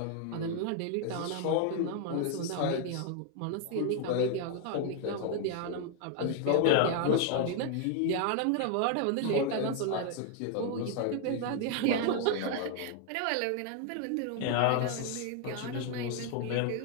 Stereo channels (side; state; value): both; different; correlation 0.00